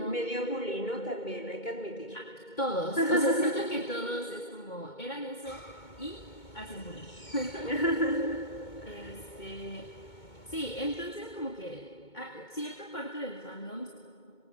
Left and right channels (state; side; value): late; right; 2.2 ms